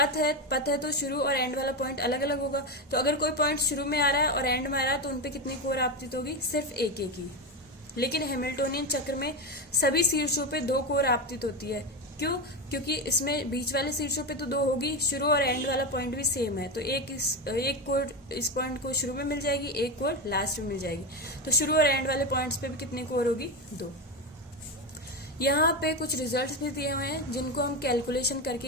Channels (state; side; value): normal; both; correlation 0.15